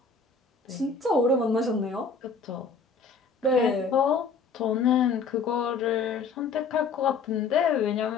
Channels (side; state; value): right; quieter; 4.9 dB